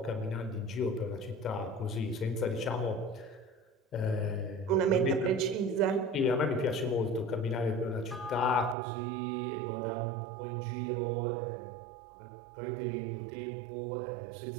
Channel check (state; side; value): drops out; left; at 8.8 s